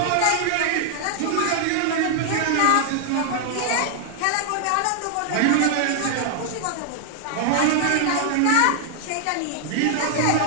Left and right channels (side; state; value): both; different; correlation -0.01